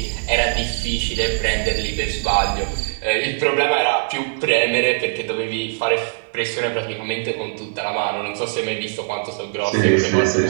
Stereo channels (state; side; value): silent; left; 65 dB below the other